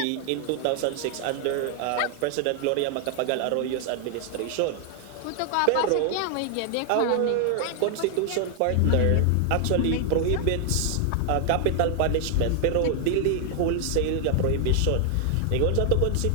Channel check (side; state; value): both; different; correlation 0.00